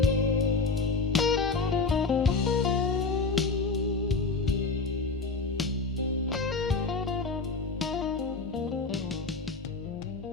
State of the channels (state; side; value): quieter; right; 4.2 dB